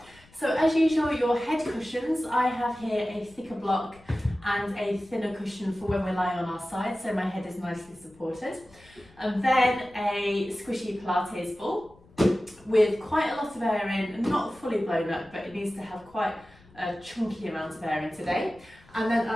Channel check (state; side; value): noise; left; rumble, 27 dB below the sound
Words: So as usual, your head cushions, I have here a thicker block and a thinner cushion for when we're lying on our side, so my head is nicely supported. And then a squishy Pilates ball with quite a lot of air in, not fully blown up, but it needs to have quite a chunky amount of air in today. And then